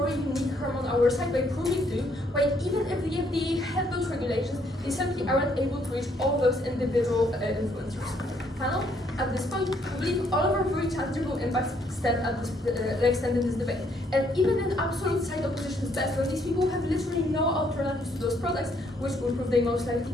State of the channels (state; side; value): normal; both; correlation 0.69